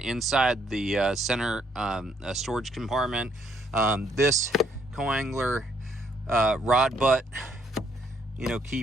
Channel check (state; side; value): normal; both; correlation 0.70